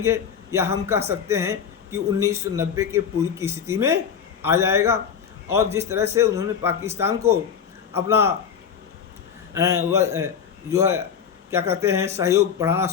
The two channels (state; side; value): quieter; right; 7.4 dB